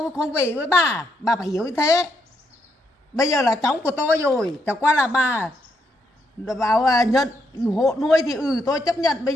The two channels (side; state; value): both; normal; correlation 0.77